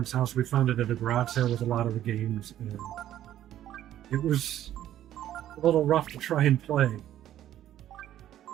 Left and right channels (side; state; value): left; quieter; 12.1 dB